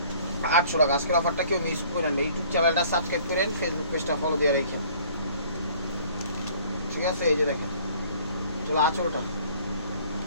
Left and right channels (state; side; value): inverted; both; correlation -0.54